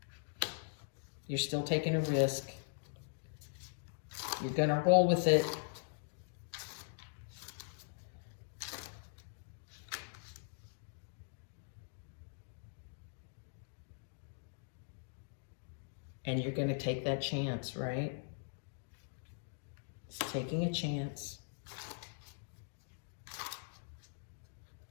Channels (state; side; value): silent; right; digital silence